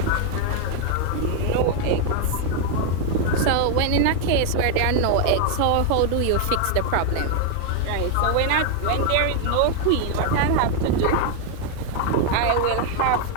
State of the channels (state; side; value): different; both; correlation 0.00